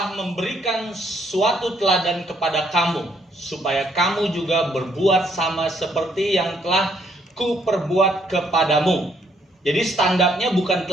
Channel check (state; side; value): normal; both; correlation 0.70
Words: memberikan suatu teladan kepada kamu, supaya kamu juga berbuat sama seperti yang telah kuperbuat kepadamu. Jadi standarnya bukan